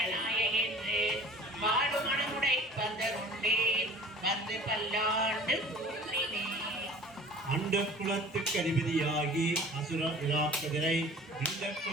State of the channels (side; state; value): both; normal; correlation 0.45